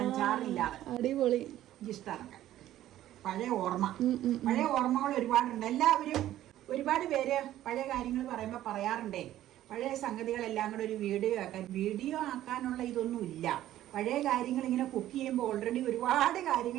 ചാറില്ലാതെ. അടിപൊളി. എനിക്കിഷ്ടമാണ്. പഴയ ഓർമ്മകൾ ഒരുപാടുണ്ട്. എല്ലാവരും ഒരുപാട് പേര് പഴയ കാര്യങ്ങൾ പറയുമ്പോൾ പറയാറുണ്ടേ, പഴയ സംഗതികളെല്ലാം കൂടെ ഒരു വീഡിയോ ആക്കാനുള്ള ഇതൊന്നും ഇല്ല. പഴയ കാര്യങ്ങൾ ഇങ്ങനെ കുക്ക് ചെയ്യുമ്പോൾ ഓൾറെഡി ഒരുപാട്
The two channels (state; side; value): quieter; left; 13.3 dB